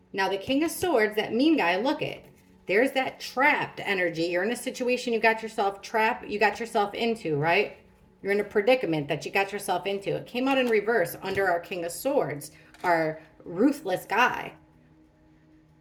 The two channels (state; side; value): identical; both; correlation 1.00